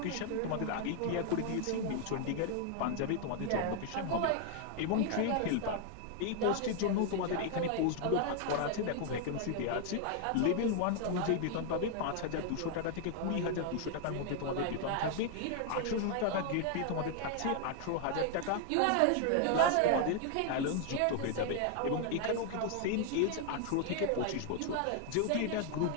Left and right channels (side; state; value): both; different; correlation 0.00